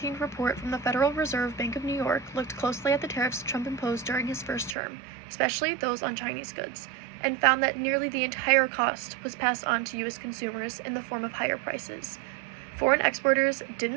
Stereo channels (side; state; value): left; drops out; at 4.8 s